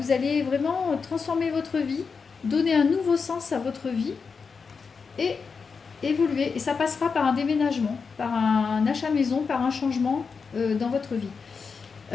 allez vraiment transformer votre vie, donner un nouveau sens à votre vie et évoluer. Et ça passera par un déménagement, par un achat maison, par un changement dans votre vie.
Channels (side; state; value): right; quieter; 5.3 dB